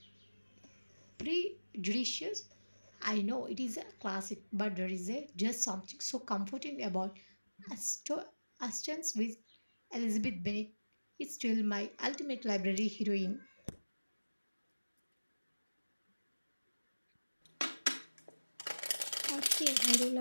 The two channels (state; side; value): inverted; both; correlation -1.00